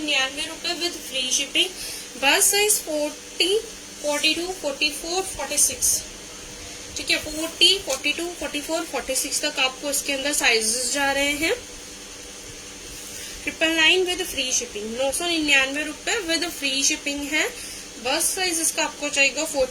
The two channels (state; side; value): identical; both; correlation 1.00